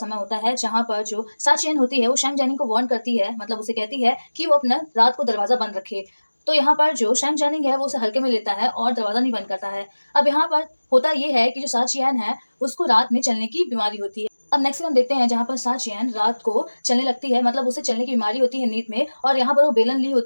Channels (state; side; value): inverted; both; correlation -1.00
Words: होता है जहाँ पर जो साचियन होती है वो शैंग जेनिंग को वार्न करती है, मतलब उसे कहती है कि वो अपना रात को दरवाजा बंद रखे। तो यहाँ पर जो शैंग जेनिंग है वो उसे हल्के में लेता है और दरवाजा नहीं बंद करता है। अब यहाँ पर होता ये है कि जो साचियन है उसको रात में चलने की बीमारी होती है। अब नेक्स्ट हम देखते हैं जहाँ पर साचियन रात को चलने लगती है, मतलब उसे चलने की बीमारी होती है नींद में, और यहाँ पर वो बेलन ली